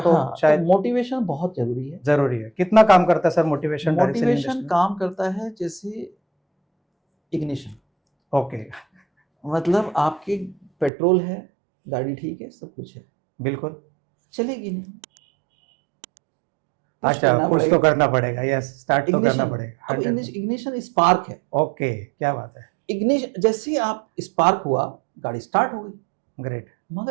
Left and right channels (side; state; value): left; drops out; at 10.9 s